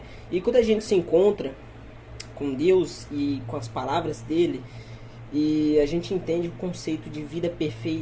E quando a gente se encontra com Deus e com as palavras dele, e a gente entende o conceito de vida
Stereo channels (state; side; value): identical; both; correlation 1.00